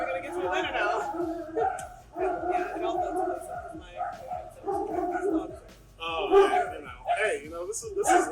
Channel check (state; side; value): identical; both; correlation 1.00